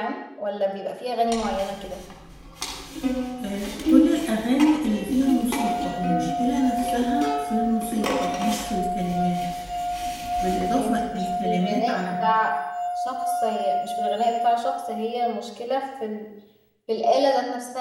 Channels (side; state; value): both; identical; correlation 1.00